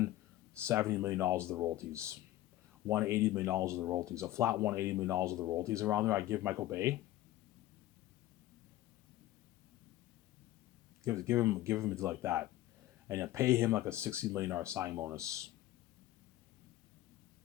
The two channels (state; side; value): quieter; right; 15.0 dB